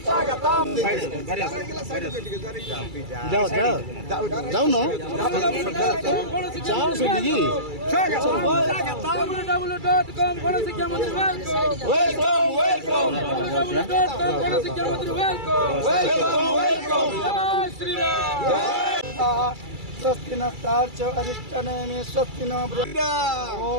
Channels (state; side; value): late; left; 2.3 ms